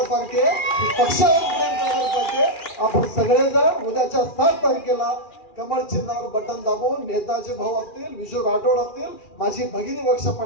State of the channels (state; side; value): late; right; 2.4 ms